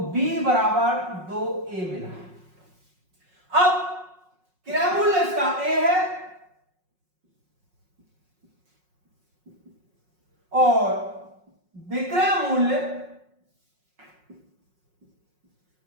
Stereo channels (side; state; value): left; late; 5.5 ms